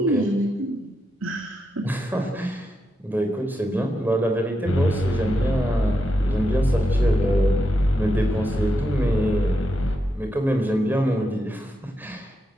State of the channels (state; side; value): normal; both; correlation 0.85